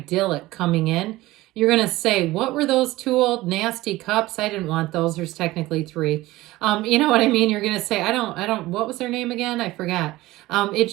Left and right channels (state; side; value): quieter; left; 18.2 dB